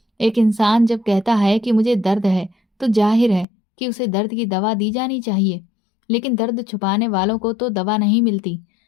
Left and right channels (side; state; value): right; drops out; at 3.5 s